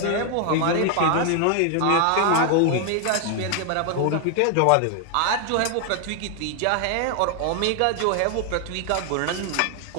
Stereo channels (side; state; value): both; different; correlation 0.00